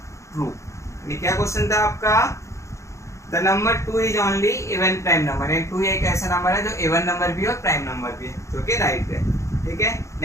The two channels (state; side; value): late; right; 0.14 ms